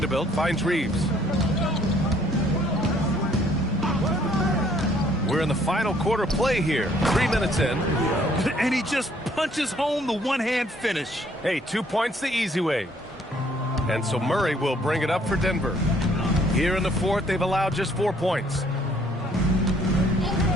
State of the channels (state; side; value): normal; both; correlation 0.62